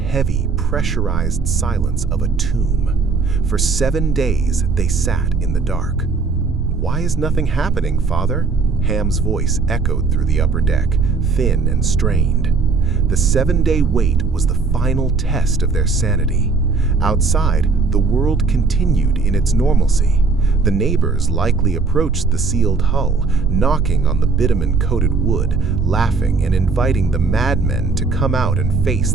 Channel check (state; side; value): quieter; left; 4.5 dB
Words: pressurized silence of a tomb. For 7 days, they sat in the dark. "Why is nothing happening, Father?" Ham's voice echoed through the upper deck, thin and strained. The 7-day wait was the final test of their sanity. Outside, the world continued in its normalcy. The neighbors likely approached the sealed hull, knocking on the bitumen-coated wood, laughing and inviting the madmen to come out and face